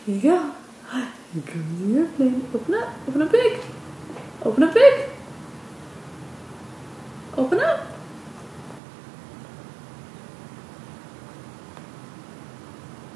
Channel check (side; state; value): left; drops out; at 8.8 s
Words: Here you go. Here comes the airplane. Open up. Open up big. Open up big. Open up.